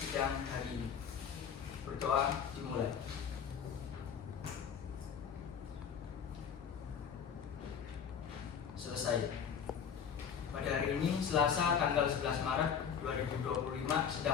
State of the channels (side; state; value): right; quieter; 7.4 dB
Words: hari ini. Berdoa dimulai. Selesai. Pada hari ini, Selasa tanggal 11 Maret 2025,